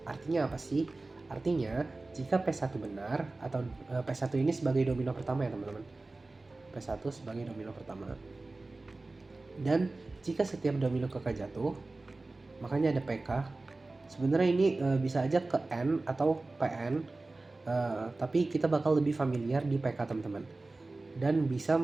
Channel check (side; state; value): left; quieter; 3.2 dB